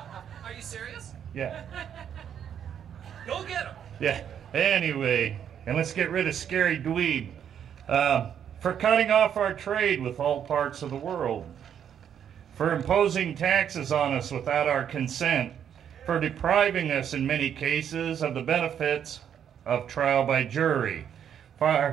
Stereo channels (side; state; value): left; quieter; 8.8 dB